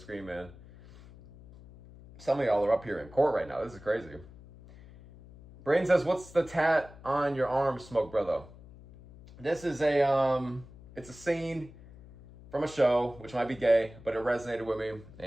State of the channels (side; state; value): left; noise; hum, 20 dB below the sound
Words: man. Some of y'all are up here in court right now. This is crazy. Brain says, what's the tat on your arm, Smoke Brother? This is it's a scene from a show, which might be gay, but it resonated with me.